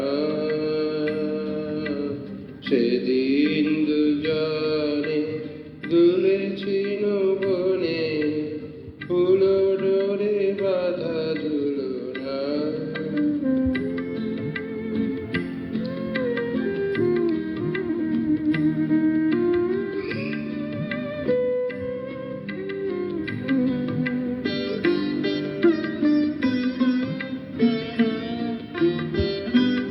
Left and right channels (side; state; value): both; identical; correlation 1.00